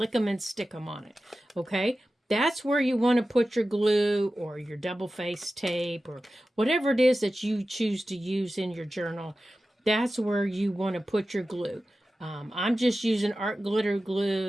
stick 'em on it, okay? That's where you want to put your glue or your double-faced tape or whatever it is that you choose to use in your journal. That's where you want to put your glue. I'm just using art glitter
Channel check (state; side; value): normal; both; correlation 0.94